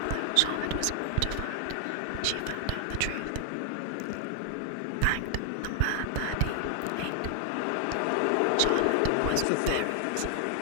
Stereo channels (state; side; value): different; both; correlation 0.00